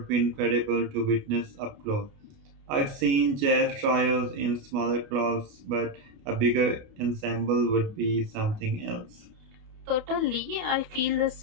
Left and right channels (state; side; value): late; left; 29 ms